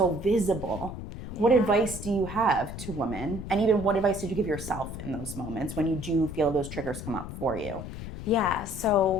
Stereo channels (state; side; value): noise; left; rumble, 9 dB below the sound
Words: visible, what advice do you have to women? And even what advice did you give yourself in those moments when you do feel those triggers come up for you? Yeah,